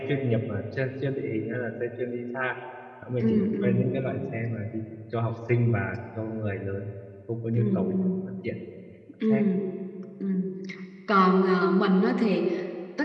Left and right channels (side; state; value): both; identical; correlation 1.00